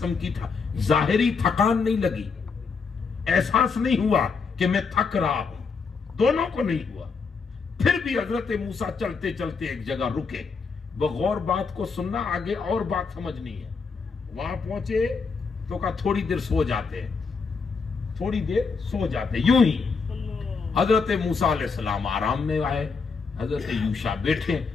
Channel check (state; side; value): quieter; right; 5.0 dB